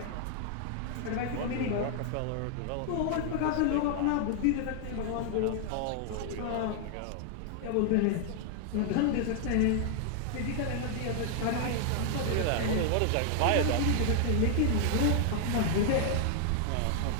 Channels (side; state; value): both; different; correlation 0.00